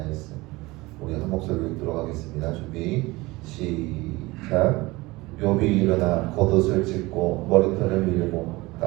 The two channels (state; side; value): quieter; left; 21.5 dB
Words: 우리 한 목소리로 읽도록 하겠습니다. 준비 시작. 욥이 일어나 겉옷을 찢고 머리털을 밀고